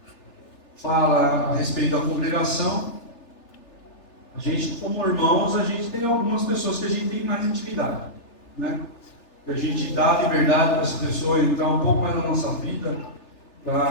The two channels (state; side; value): late; right; 3.4 ms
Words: fala a respeito da congregação, a gente, como irmãos, a gente tem algumas pessoas que a gente tem mais intimidade, né? Que a gente dá liberdade para essa pessoa entrar um pouco mais na nossa vida,